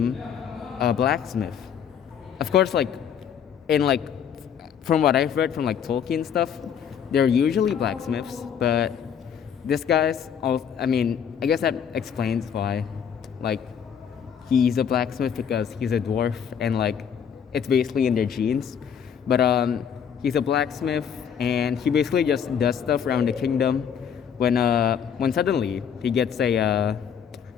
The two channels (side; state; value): right; quieter; 7.9 dB